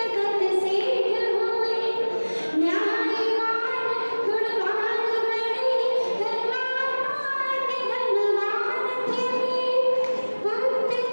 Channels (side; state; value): both; inverted; correlation -1.00